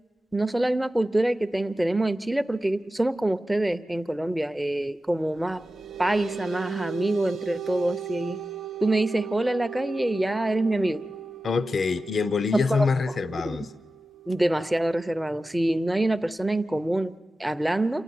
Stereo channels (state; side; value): normal; both; correlation 0.93